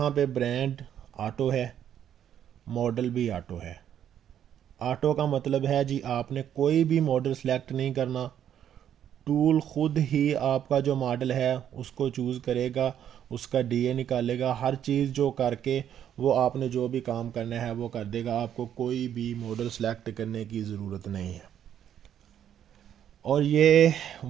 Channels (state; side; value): quieter; left; 9.9 dB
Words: पे ब्रांड ऑटो है, मॉडल भी ऑटो है। ऑटो का मतलब है जी आपने कोई भी मॉडल सेलेक्ट नहीं करना, टूल खुद ही आपका जो मॉडल है उसको चूज़ करेगा, उसका DA निकालेगा, हर चीज़ जो करके वो आपने जो भी काम करना है वो कर देगा। आपको कोई भी मॉडल सेलेक्ट करने की ज़रूरत नहीं है। और ये